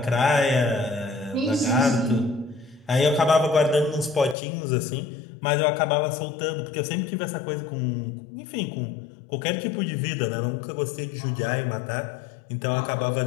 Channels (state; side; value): drops out; right; at 4.4 s